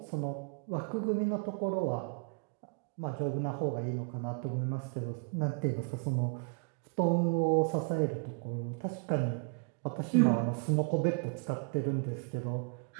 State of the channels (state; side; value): quieter; left; 37.0 dB